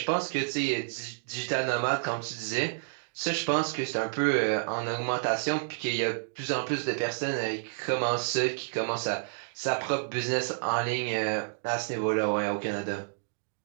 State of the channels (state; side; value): silent; left; digital silence